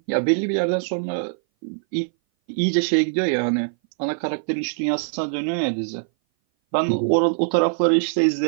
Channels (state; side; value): silent; left; 59 dB below the other